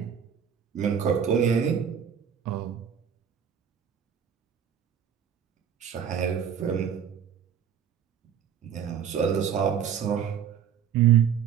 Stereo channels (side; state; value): left; quieter; 8.2 dB